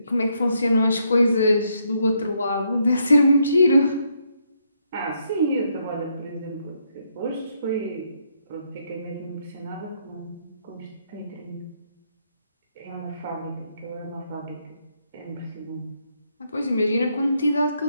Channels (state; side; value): inverted; both; correlation -0.75